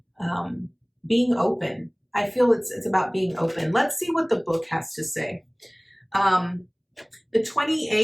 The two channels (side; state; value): both; identical; correlation 1.00